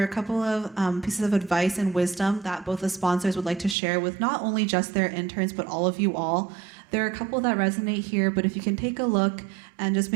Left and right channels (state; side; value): drops out; left; at 3.8 s